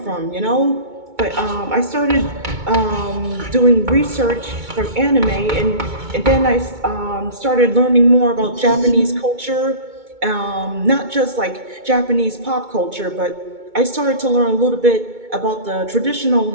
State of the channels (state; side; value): late; left; 2.2 ms